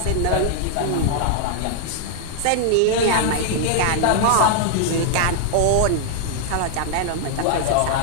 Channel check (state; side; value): different; both; correlation 0.00